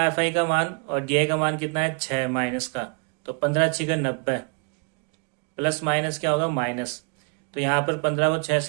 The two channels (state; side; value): quieter; left; 37.1 dB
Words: एफ आई का मान और डी आई का मान कितना है, 6 माइनस का। तो 15 6 90, प्लस माइनस क्या होगा, माइनस। तो यहाँ पर 15 को 6